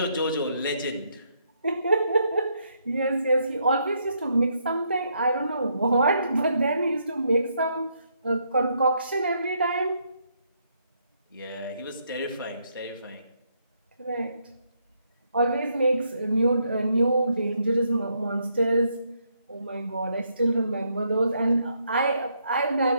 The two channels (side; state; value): both; inverted; correlation -0.75